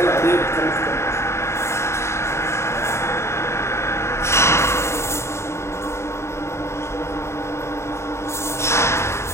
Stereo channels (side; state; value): right; late; 0.13 ms